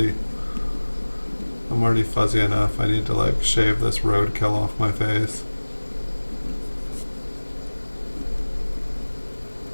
I'm already fuzzy enough. I need to like shave this roadkill off my face.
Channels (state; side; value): inverted; both; correlation -1.00